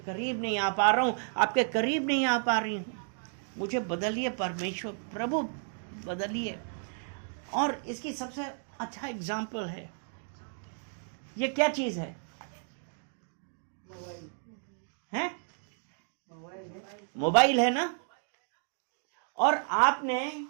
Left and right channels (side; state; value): left; silent; 56 dB below the other